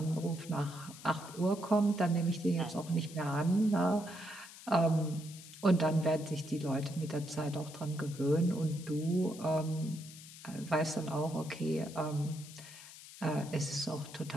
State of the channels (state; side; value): noise; left; hiss, 16 dB below the sound